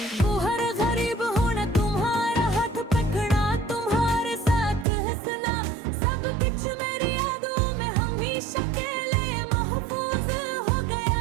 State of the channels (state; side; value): drops out; left; at 4.9 s